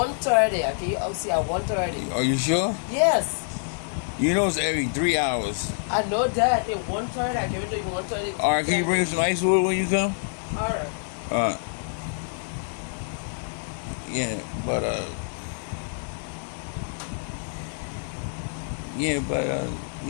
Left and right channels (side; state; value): right; silent; digital silence